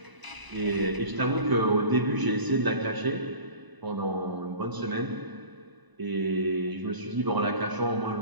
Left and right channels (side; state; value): left; late; 1.0 ms